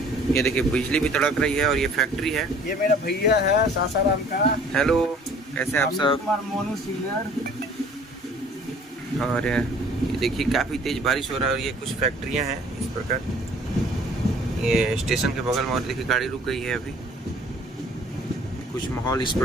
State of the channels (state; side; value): normal; both; correlation 0.53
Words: ये देखिए बिजली भी तड़क रही है। और ये फैक्ट्री है। ये मेरा भैया है सासाराम का। हेलो, कैसे आप सब? मोनू सीनियर। और ये देखिए काफी तेज बारिश हो रहा है, और ये कुछ फैक्ट्रियां हैं इस प्रकार। ये स्टेशन के बगल में, और देखिए गाड़ी रुक गई है अभी। कुछ माहौल इस